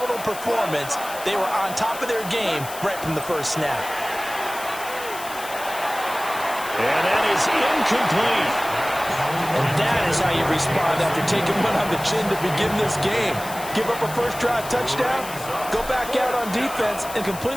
performance. They were on top of their game right from the first snap. And that is incomplete. And that is how you respond after taking one on the chin to begin this game. Give up a first drive touchdown, go back out on defense, and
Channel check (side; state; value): left; noise; hiss, 13 dB below the sound